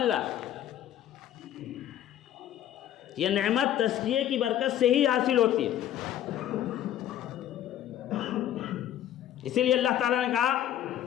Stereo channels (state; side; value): quieter; right; 11.5 dB